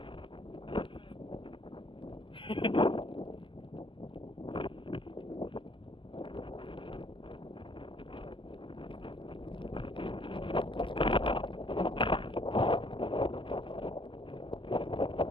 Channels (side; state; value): right; late; 0.25 ms